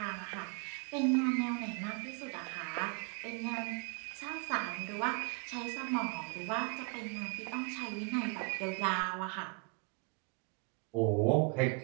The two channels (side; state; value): left; quieter; 35.8 dB